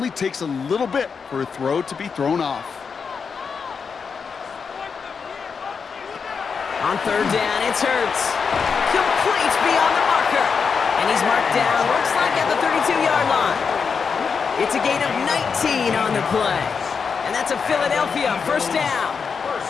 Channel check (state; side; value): quieter; right; 5.8 dB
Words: takes a little bit for a throw to be thrown off. On 3rd down, it's Hurts. Complete beyond the marker. And he's marked down, looks like at the 32-yard line. It's a gain of 19 on the play. And that's a Philadelphia 1st down.